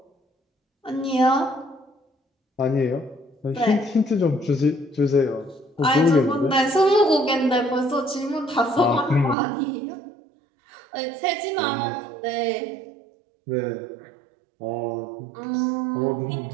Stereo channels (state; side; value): drops out; left; at 9.3 s